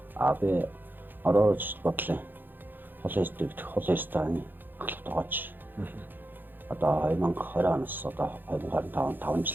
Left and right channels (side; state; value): left; late; 0.091 ms